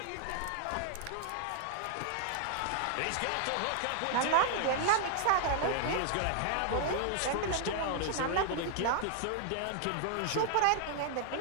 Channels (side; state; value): both; different; correlation 0.00